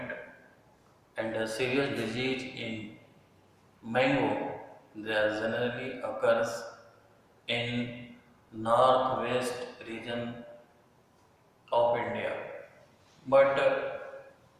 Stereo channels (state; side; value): identical; both; correlation 1.00